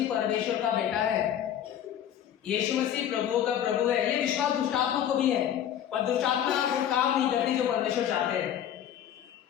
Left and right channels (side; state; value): right; quieter; 10.2 dB